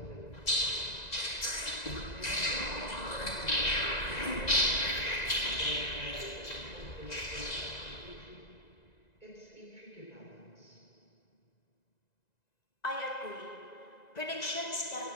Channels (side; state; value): right; late; 1.9 ms